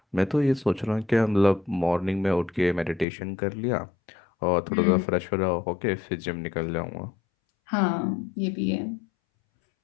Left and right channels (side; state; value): right; drops out; at 3.1 s